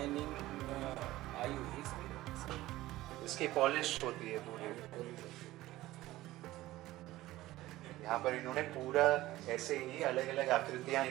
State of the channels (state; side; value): quieter; left; 16.7 dB